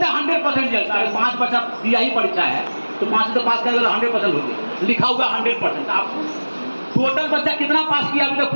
है 100% रिजल्ट। 5 बच्चा दिया ही परीक्षा है तो 5 से तो पास करेगा, 100% हो गया, लिखा हुआ 100%। आप टोटल बच्चा कितना पास किया अभी तक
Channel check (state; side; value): inverted; both; correlation -1.00